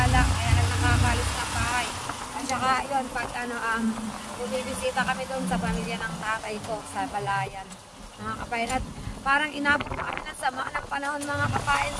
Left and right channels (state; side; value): identical; both; correlation 1.00